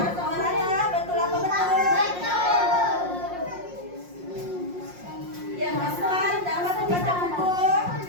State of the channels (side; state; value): left; late; 5.6 ms